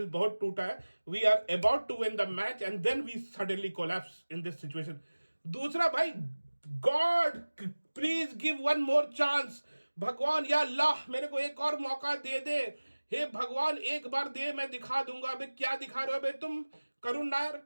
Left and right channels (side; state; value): both; inverted; correlation -1.00